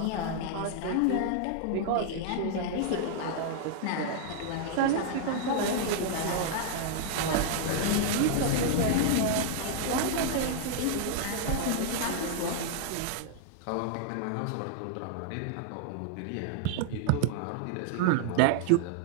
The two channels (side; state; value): both; different; correlation 0.00